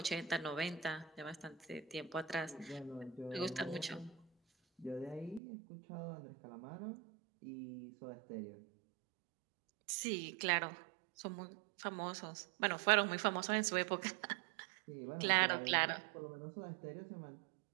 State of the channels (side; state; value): left; drops out; at 5.4 s